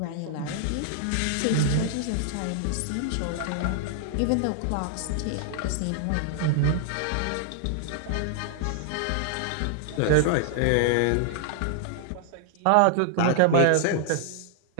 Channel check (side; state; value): both; different; correlation 0.00